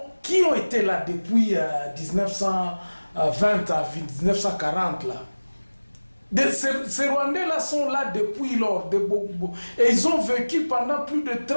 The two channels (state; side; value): inverted; both; correlation -1.00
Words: ont été là depuis 1920 à 1940 là. Ces Rwandais là sont là depuis lors, et ils ont vécu pendant plus de